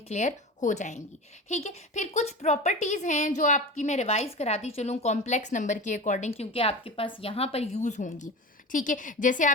क्लियर हो जाएंगी। ठीक है, फिर कुछ प्रॉपर्टीज़ हैं जो आपकी मैं रिवाइज कराती चलूँ कॉम्प्लेक्स नंबर के अकॉर्डिंग, क्योंकि आपके पास यहाँ पर यूज़ होंगी। ठीक है, जैसे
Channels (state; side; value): normal; both; correlation 0.30